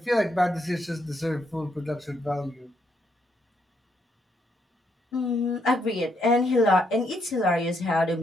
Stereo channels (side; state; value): both; normal; correlation 0.75